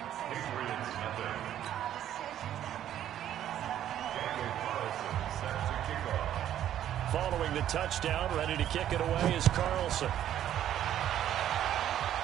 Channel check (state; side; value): quieter; left; 11.2 dB